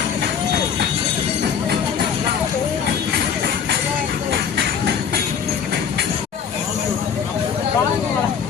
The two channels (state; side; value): quieter; right; 7.3 dB